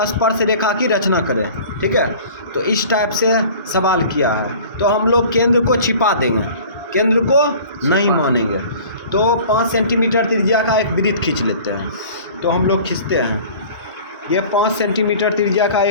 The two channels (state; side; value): inverted; both; correlation -0.45